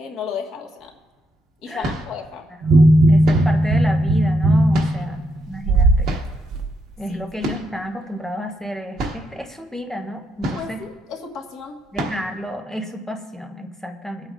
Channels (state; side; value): normal; both; correlation 0.78